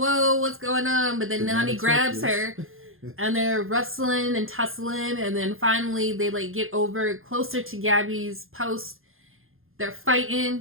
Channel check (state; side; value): late; left; 0.60 ms